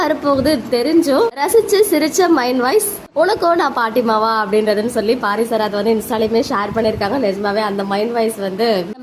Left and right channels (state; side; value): identical; both; correlation 1.00